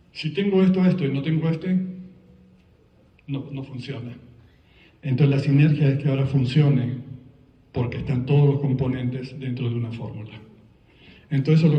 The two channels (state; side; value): identical; both; correlation 1.00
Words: Si tengo esto y no tengo no funciona. Entonces la sinergia es que ahora funcione porque están todos los componentes dentro de una fórmula. Entonces eso es lo